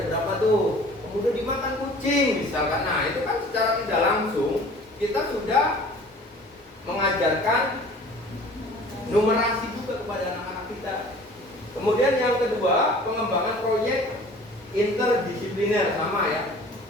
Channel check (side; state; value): both; normal; correlation 0.47